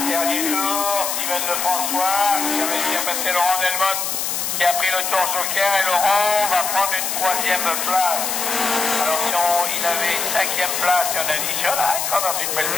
Dernier tour, Steven Lefrançois qui a réussi à passer Laurent Delmotte qui a pris le tour joker et Laurent va prendre une troisième place. Alors si il avait une cinquième place et on additionne, il sera dans une belle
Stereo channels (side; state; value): left; noise; hiss, 1 dB below the sound